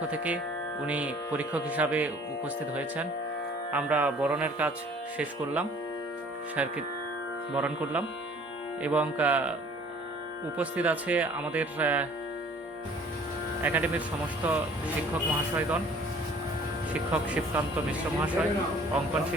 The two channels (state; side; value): normal; both; correlation 0.53